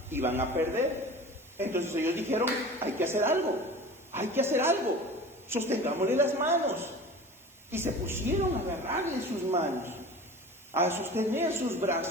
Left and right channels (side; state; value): both; normal; correlation 0.37